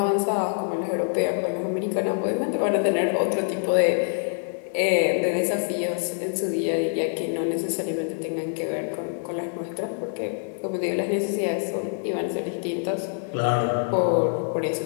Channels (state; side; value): silent; right; 61 dB below the other